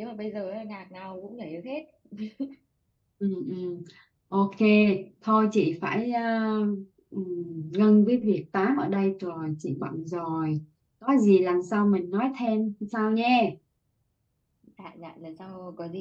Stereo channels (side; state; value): both; identical; correlation 1.00